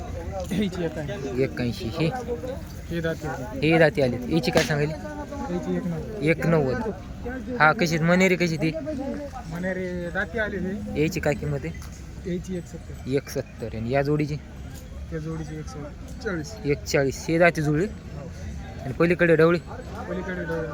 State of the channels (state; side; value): identical; both; correlation 1.00